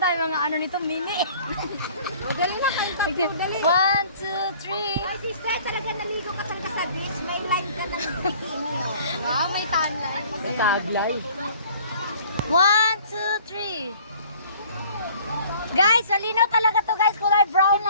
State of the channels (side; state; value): both; inverted; correlation -0.52